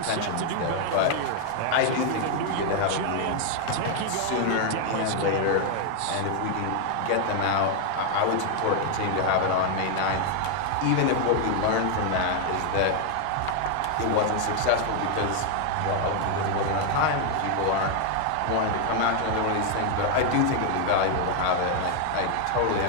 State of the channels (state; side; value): different; both; correlation 0.00